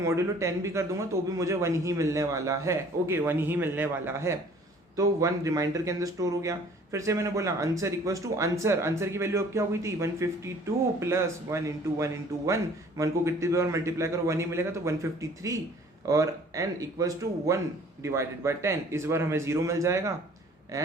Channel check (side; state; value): both; normal; correlation 0.53